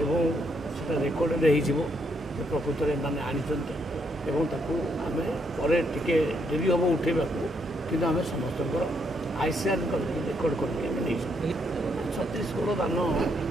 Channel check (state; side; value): normal; both; correlation 0.75